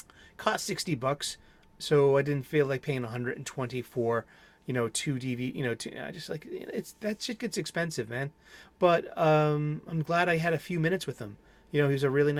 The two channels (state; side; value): identical; both; correlation 1.00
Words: Cost $60, so I didn't feel like paying $120 for, two DVD. I just like that shit gets expensive, man. But I'm glad I had a few minutes with him. He was a really